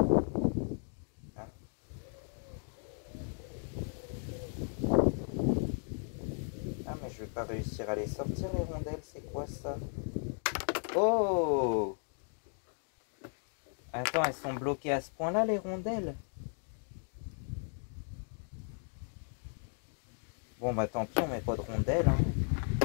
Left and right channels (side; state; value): right; silent; 54 dB below the other